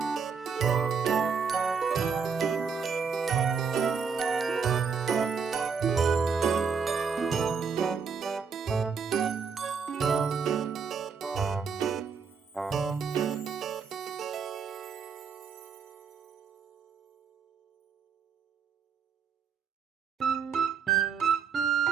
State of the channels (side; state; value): left; quieter; 6.0 dB